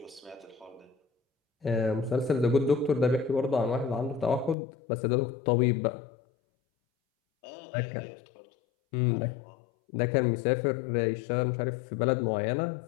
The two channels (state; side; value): drops out; right; at 4.5 s